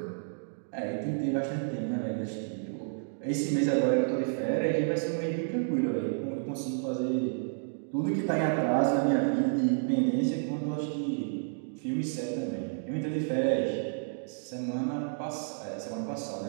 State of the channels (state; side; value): silent; left; digital silence